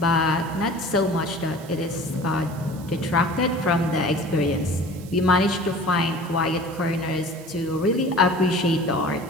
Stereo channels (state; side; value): noise; right; hiss, 21 dB below the sound